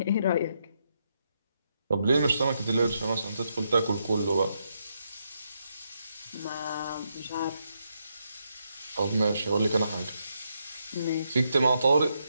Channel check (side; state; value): both; inverted; correlation -0.80